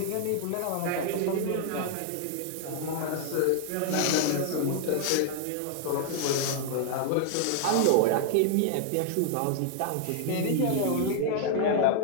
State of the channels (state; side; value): different; both; correlation 0.00